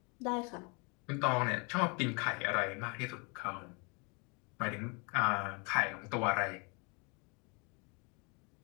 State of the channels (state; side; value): quieter; right; 31.9 dB